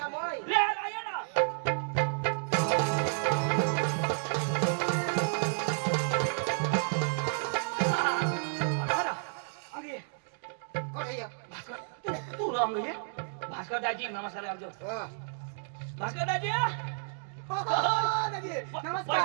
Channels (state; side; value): silent; left; digital silence